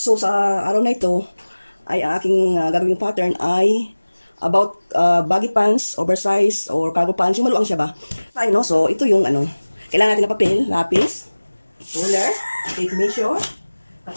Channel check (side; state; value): both; inverted; correlation -1.00